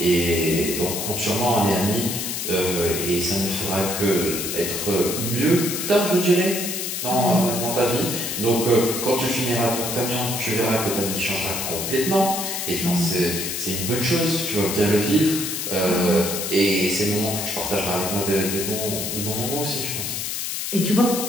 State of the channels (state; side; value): noise; left; hiss, 3 dB below the sound